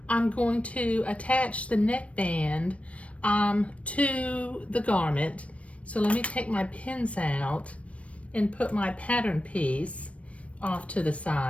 I'm going to attach the neckband to the garment. So let me take my pins out and put my pattern piece off to the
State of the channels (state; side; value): late; right; 0.063 ms